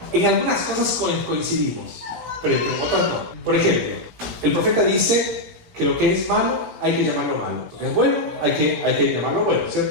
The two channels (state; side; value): late; left; 17 ms